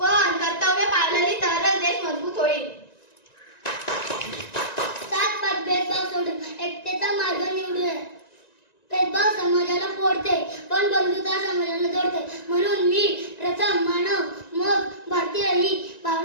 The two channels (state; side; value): late; right; 1.9 ms